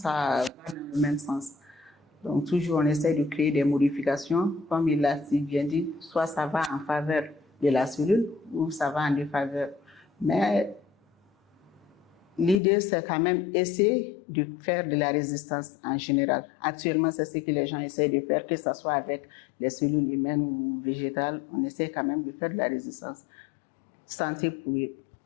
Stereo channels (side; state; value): right; drops out; at 12.6 s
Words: va dans le même sens. Donc, toujours, on essaie de créer des modifications. Comme il l'a si bien dit, soit ça va en faveur de la cellule ou ça va en défaveur. Mais l'idée, c'est quand même essayer de faire de la résistance en général. Actuellement, c'est ce que les gens essaient de faire, que ce soit avec les cellules humaines ou végétales. On essaie quand même de faire de la résistance. Santé pour